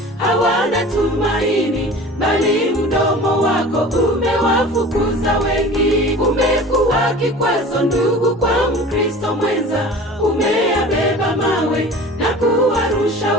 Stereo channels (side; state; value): both; normal; correlation 0.40